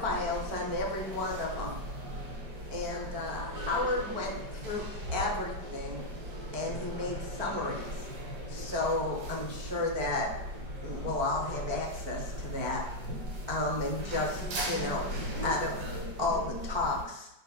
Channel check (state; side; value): late; left; 5.0 ms